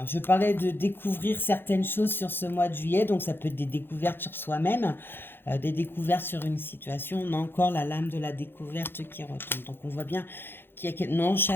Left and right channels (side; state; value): right; late; 0.10 ms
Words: je parlais de découvrir certaines choses sur ce mois de juillet, donc ça peut être des découvertes sur soi-même, des découvertes sur une situation. On a encore la lame de la découverte qui retombe. Donc on voit bien qu'il y a... Non,